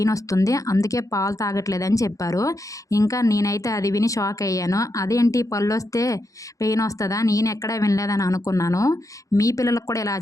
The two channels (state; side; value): late; right; 0.16 ms